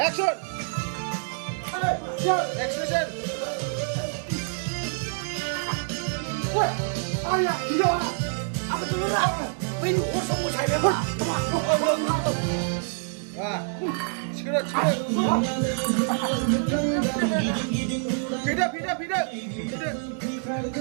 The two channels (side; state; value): left; silent; 59 dB below the other